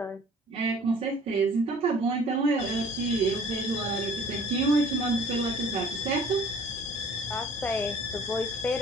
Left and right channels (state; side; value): normal; both; correlation 0.51